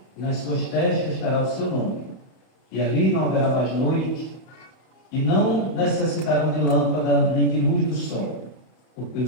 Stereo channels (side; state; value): right; late; 31 ms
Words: e nas suas testas estará o seu nome. E ali não haverá mais noite, e não necessitarão de lâmpada nem de luz do sol, porque o